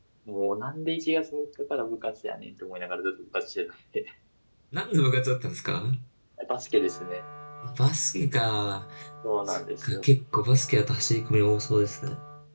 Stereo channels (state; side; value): inverted; both; correlation -1.00